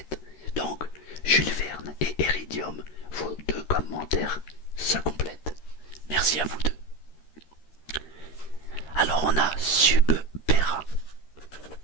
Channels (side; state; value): right; late; 13 ms